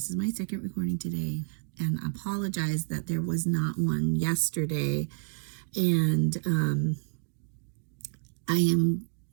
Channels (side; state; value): left; silent; digital silence